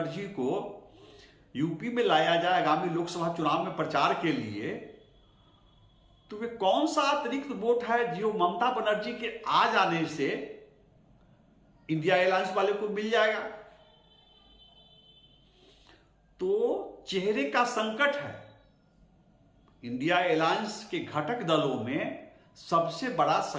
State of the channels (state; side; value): identical; both; correlation 1.00